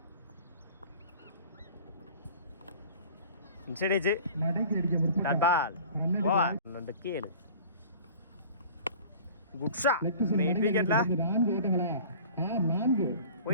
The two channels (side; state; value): both; inverted; correlation -0.44